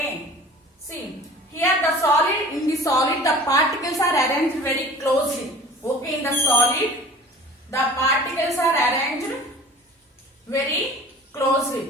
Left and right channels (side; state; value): both; normal; correlation 0.44